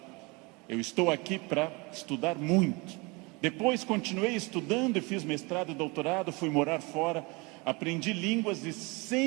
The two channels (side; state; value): left; quieter; 27.3 dB